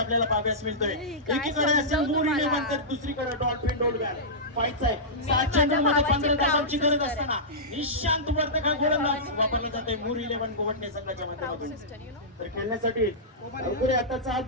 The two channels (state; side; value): normal; both; correlation -0.15